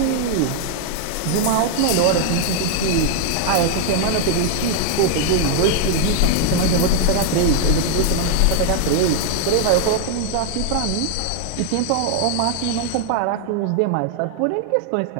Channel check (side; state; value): both; different; correlation 0.00